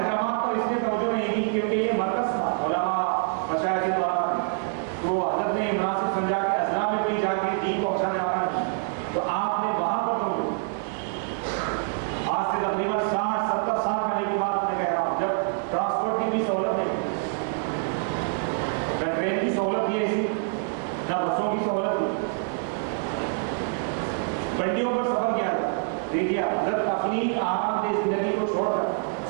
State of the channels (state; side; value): silent; left; 61 dB below the other